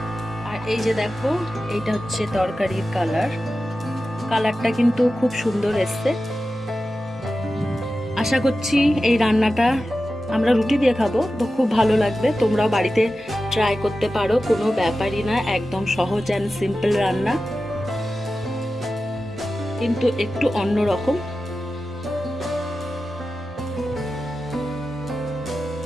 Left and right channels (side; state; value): both; normal; correlation 0.93